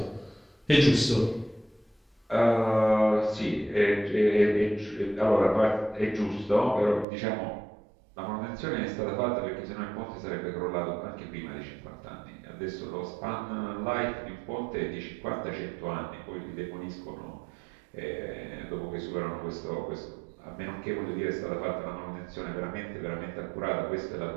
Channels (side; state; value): left; drops out; at 7.1 s